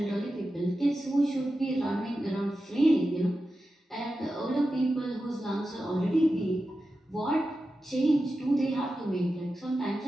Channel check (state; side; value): normal; both; correlation 0.92